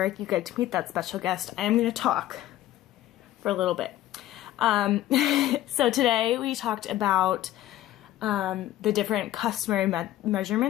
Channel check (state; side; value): quieter; right; 14.1 dB